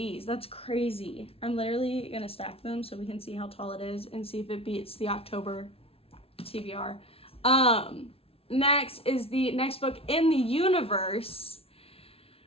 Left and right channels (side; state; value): right; late; 0.27 ms